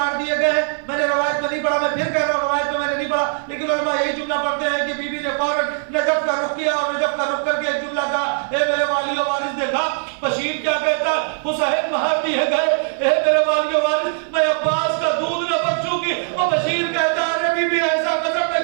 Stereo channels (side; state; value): left; silent; 60 dB below the other